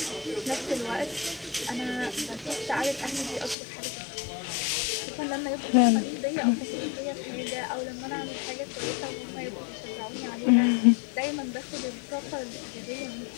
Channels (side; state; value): right; drops out; at 3.6 s